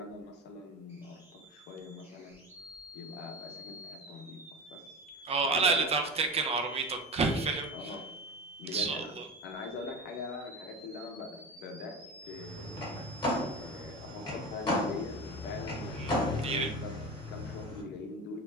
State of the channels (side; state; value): both; normal; correlation 0.28